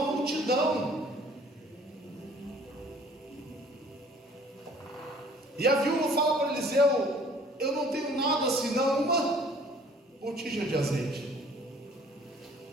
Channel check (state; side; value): normal; both; correlation 0.54